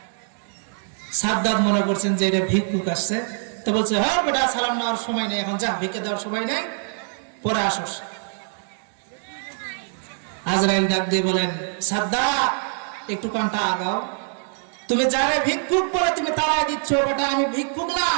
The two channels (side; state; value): left; silent; 63 dB below the other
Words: সাদ্দাত মনে করছেন যে এটা ভিক্ষুক আসছে, তো বলছে, হ্যাঁ বেটা, সালাম নেওয়ার সময় নেই, এখন যা, ভিক্ষা দেওয়ার সময় নেই, পরে আসস। আজরাইল ডাক দিয়ে বলেন, সাদ্দাত, একটু কানটা আগাও। তুমি যারে ভিক্ষুক বলে তুমি তাড়াই দিচ্ছ, বেটা আমি ভিক্ষুক না,